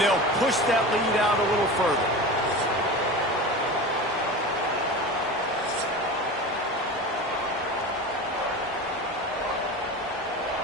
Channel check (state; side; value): normal; both; correlation 0.30